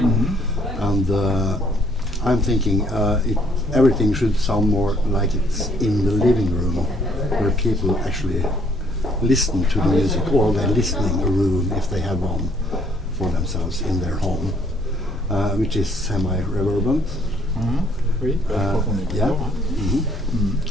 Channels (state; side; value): normal; both; correlation 0.64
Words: And I'm thinking everything should sound more like it's in the living room, where people actually listen to the music, or the listening room if they have one for themselves in their home, which is semi-reverberant. Oui, je crois qu'on est d'accord.